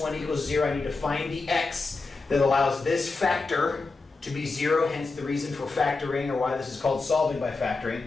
equals 0, I need to find the x that allows this factor to be 0, hence the reason for factoring, or why this is called solving by factoring.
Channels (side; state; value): right; quieter; 3.8 dB